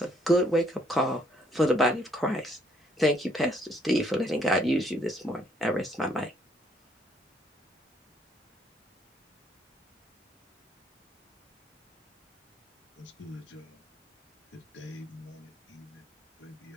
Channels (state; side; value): normal; both; correlation 0.67